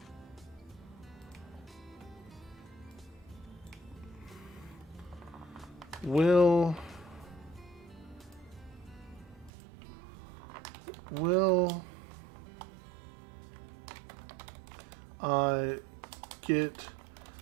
Will I get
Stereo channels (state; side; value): drops out; left; at 9.5 s